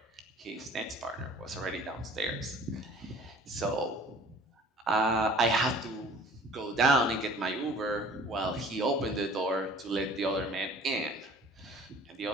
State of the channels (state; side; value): normal; both; correlation 0.49